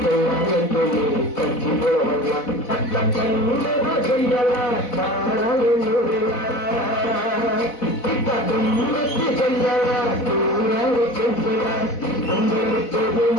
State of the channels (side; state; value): right; late; 4.1 ms